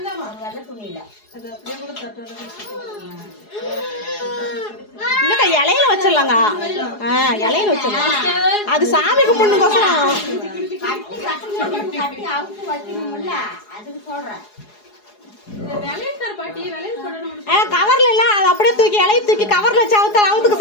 இல்லக்கா இலையில வச்சிடலாங்க. இலையில வச்சிடலாம். அது சாமி கும்பிடணுக்கோசரம் கவர்ல இல்ல அது அப்படியே தூக்கி இலைய தூக்கி கவர்ல வச்சு அவுத்துக்க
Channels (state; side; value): late; right; 4.8 ms